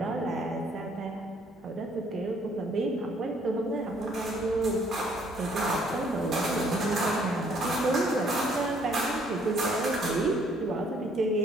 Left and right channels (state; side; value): normal; both; correlation 0.63